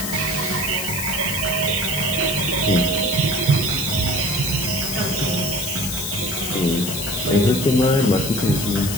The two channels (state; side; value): noise; left; hiss, 5 dB below the sound